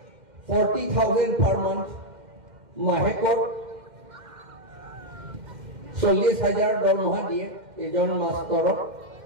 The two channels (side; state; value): left; late; 2.1 ms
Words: 40,000 per month মাহেকৰ 40,000 দৰমহা দিয়ে এজন মাষ্টৰক